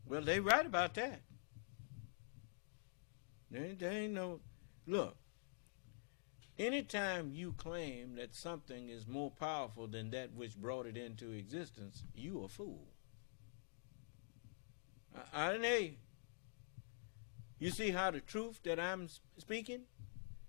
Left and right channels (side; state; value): right; silent; digital silence